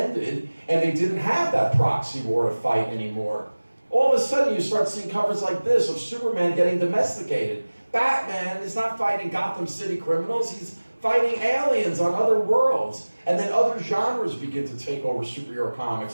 and they didn't have that proxy war to fight anymore? All of a sudden you start seeing covers like this of Superman getting domesticated. Batman is not fighting Gotham City criminals, he's fighting aliens on other worlds. And then other genres begin to take over superhero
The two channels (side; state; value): both; inverted; correlation -1.00